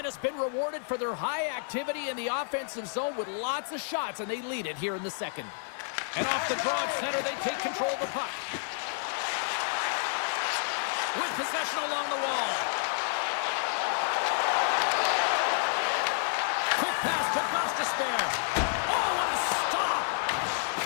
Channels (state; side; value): silent; right; 58 dB below the other